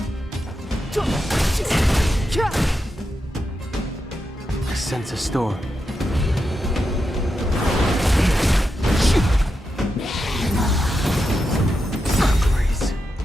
I sense a storm.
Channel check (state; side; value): normal; both; correlation 0.87